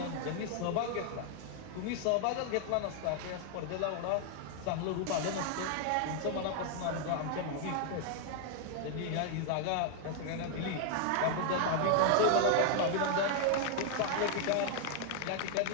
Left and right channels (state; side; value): different; both; correlation 0.00